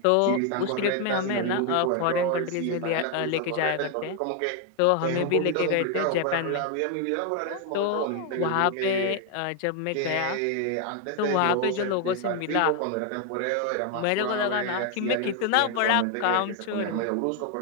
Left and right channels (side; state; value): both; different; correlation 0.01